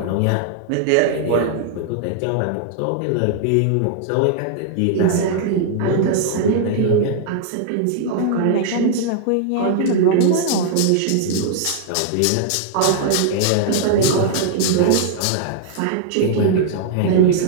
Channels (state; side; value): different; both; correlation -0.01